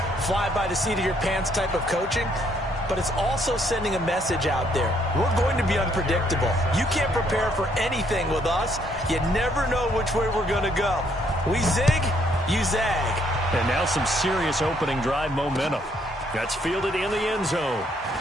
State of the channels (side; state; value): both; normal; correlation 0.69